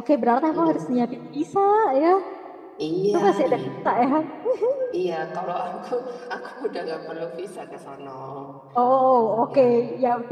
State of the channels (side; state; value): both; identical; correlation 1.00